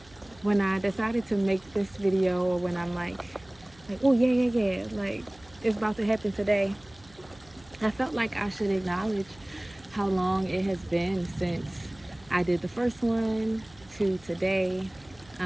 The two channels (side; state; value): right; noise; hum, 26 dB below the sound